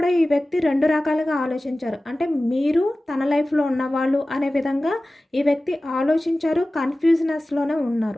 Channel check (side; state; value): both; normal; correlation 0.96